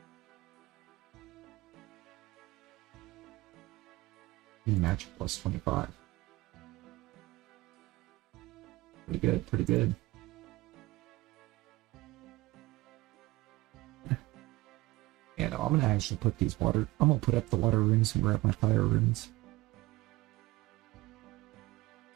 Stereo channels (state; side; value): quieter; left; 20.2 dB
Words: Magic plus 25. Pretty good, pretty good. Yeah, no, I'm gonna actually put these I'm gonna put up the water runes and grab my fire runes.